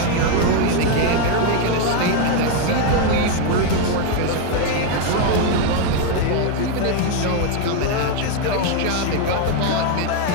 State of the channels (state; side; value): different; both; correlation 0.01